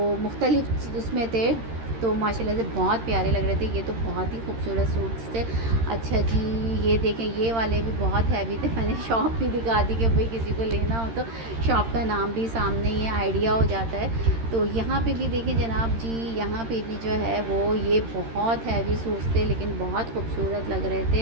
मुख्तलिफ़ उसमें थे, तो माशाल्लाह से बहुत प्यारे लग रहे थे। ये तो बहुत ही खूबसूरत सूट्स थे। अच्छा जी, ये देखें, ये वाले भी बहुत हैवी थे। मैंने शॉप भी दिखा दी कि भाई किसी को लेना हो तो शॉप का नाम भी सामने ही है, आइडिया हो जाता है। तो यहाँ पे भी देखें जनाब जी, यहाँ पे भी जो है वो ये बहुत हैवी सूट्स थे, लेकिन बहुत खूबसूरत लग रहे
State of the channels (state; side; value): late; left; 13 ms